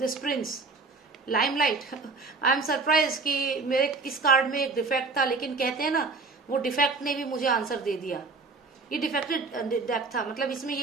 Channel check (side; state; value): left; quieter; 4.0 dB